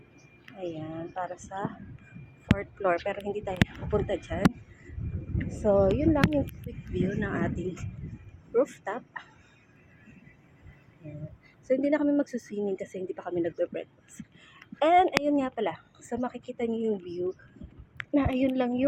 Ayan, para sa 4th floor. Pero hindi tayo pupunta dyan. So, yun lang yung quick view ng ating rooftop. Ayan. So, hindi na kami magsuswimming kasi hindi pa kami nagbe-breakfast. And, ayun nga pala. So, makikita niyo yung view na ayun lang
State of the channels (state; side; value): identical; both; correlation 1.00